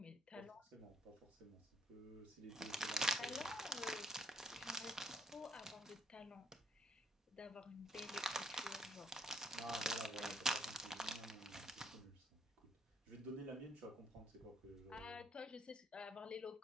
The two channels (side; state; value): both; normal; correlation 0.70